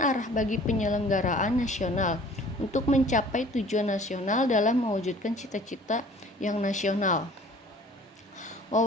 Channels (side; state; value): both; normal; correlation 0.50